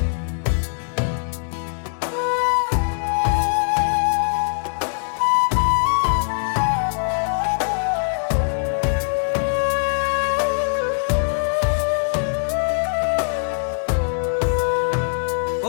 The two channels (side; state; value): right; silent; digital silence